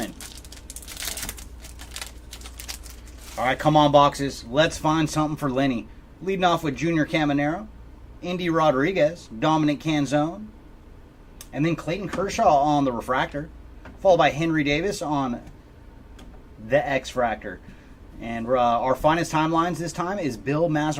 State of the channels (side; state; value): both; identical; correlation 1.00